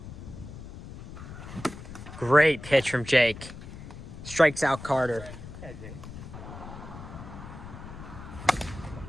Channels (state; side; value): noise; left; rumble, 12 dB below the sound